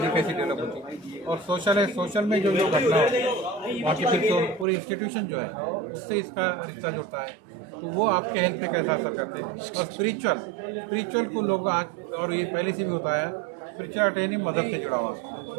कैसी डेवलप होती है। और सोशल है, सोशल में जो घटना होती है वहाँ की फिर तो पूरी इंस्टीट्यूशन जो है उससे इसका रिश्ता जुड़ता है, तो वो आपके हेल्थ पे कैसा असर करते हैं। और स्पिरिचुअल को लोग आज, और ये पहले से भी होता है, स्पिरिचुअल ट्रेनिंग मजहब से जुड़ा हुआ।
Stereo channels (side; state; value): left; drops out; at 4.7 s